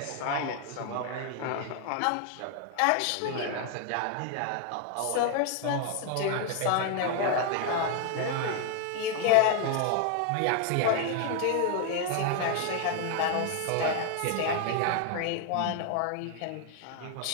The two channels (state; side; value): different; both; correlation 0.00